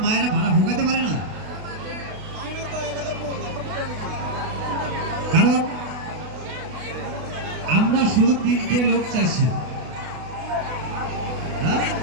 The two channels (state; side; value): late; left; 32 ms